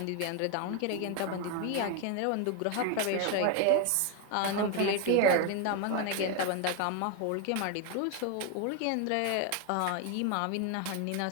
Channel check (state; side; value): different; both; correlation 0.01